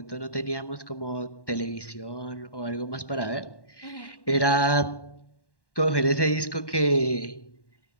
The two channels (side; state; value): right; late; 1.1 ms